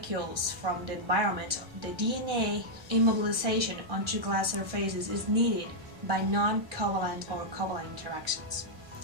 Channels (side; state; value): left; late; 1.2 ms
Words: from the environment, the DNA immobilization onto glass surfaces is needed by non-covalent or covalent interactions.